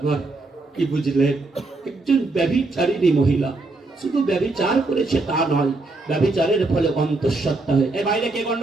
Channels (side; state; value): left; quieter; 3.3 dB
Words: কি বুঝলেন? একজন ব্যভিচারিণী মহিলা শুধু ব্যভিচার করেছে তা নয়, ব্যভিচারের ফলে অন্তঃসত্ত্বা হয়ে, এই বাইরে কে